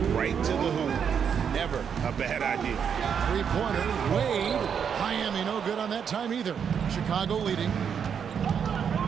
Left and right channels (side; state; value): left; quieter; 7.4 dB